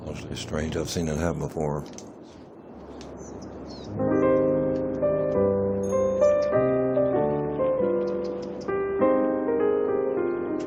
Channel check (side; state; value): both; identical; correlation 1.00